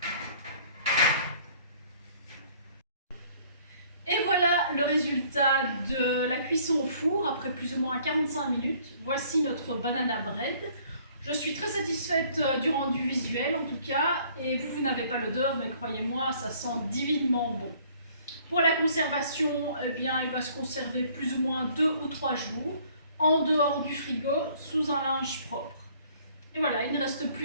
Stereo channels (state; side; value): inverted; both; correlation -0.58